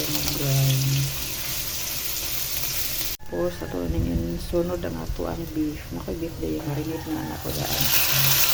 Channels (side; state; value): both; identical; correlation 1.00